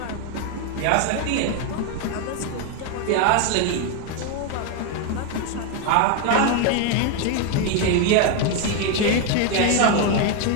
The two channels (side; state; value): both; different; correlation 0.01